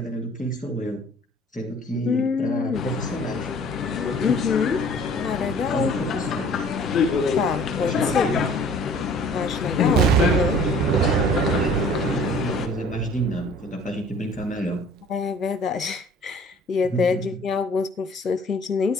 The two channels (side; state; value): both; normal; correlation 0.51